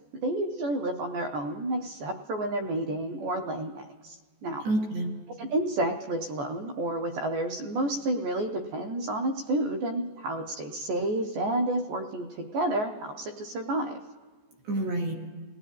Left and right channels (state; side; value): late; left; 14 ms